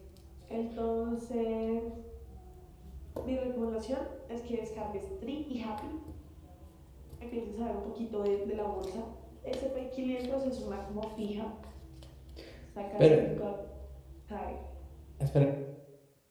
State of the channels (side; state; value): both; identical; correlation 1.00